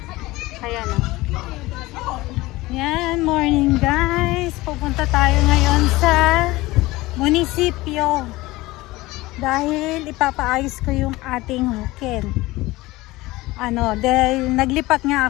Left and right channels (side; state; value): right; quieter; 19.7 dB